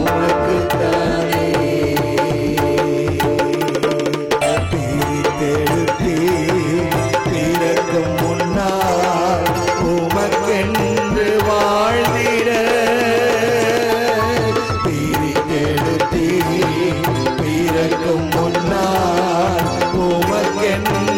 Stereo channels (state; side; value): identical; both; correlation 1.00